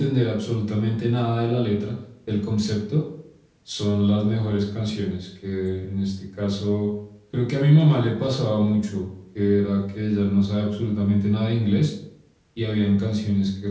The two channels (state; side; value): identical; both; correlation 1.00